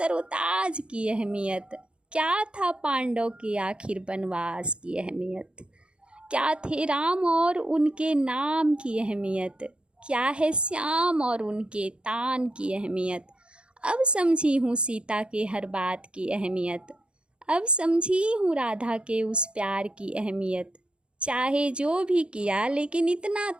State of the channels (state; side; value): late; left; 0.055 ms